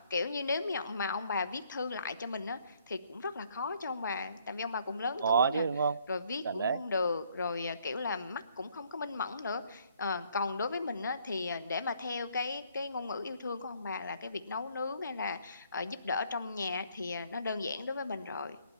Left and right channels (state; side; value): inverted; both; correlation -0.66